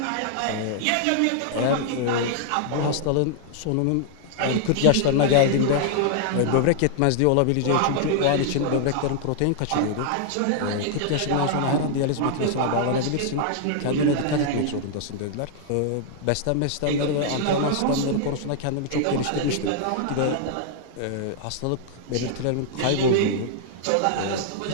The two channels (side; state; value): both; different; correlation -0.01